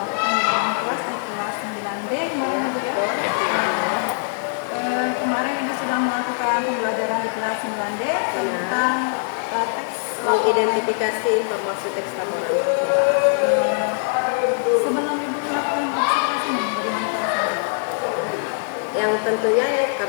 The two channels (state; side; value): silent; right; digital silence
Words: di dalam kelas di kelas 9D kemarin ya Bu ya. Kemarin Ibu sudah melakukan pembelajaran di kelas 9D tentang teks Mengidentifikasi informasi teks laporan. sebelum Ibu melakukan observasi ini, bagaimana perasaannya? Yang tentunya ya,